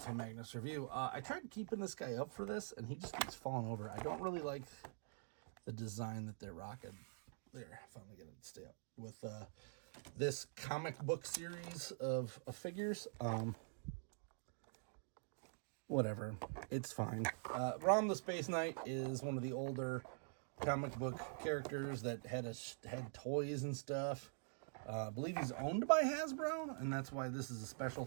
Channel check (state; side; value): silent; left; digital silence